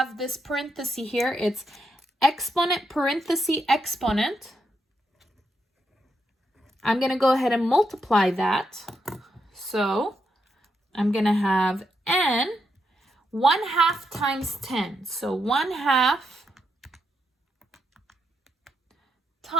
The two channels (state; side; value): normal; both; correlation 0.81